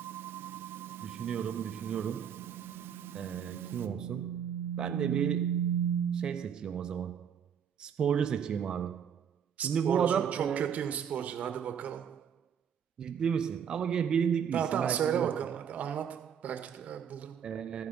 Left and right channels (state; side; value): quieter; left; 8.0 dB